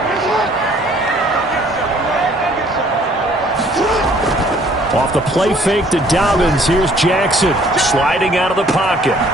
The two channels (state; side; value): normal; both; correlation 0.59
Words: Off the play fake to Dobbins, here's Jackson sliding out of the pocket.